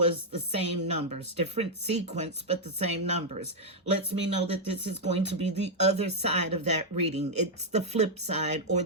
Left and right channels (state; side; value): normal; both; correlation -0.03